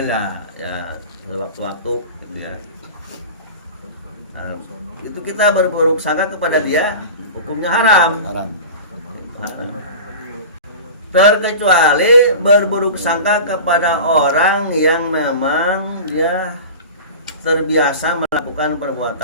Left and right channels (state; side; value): inverted; both; correlation -0.34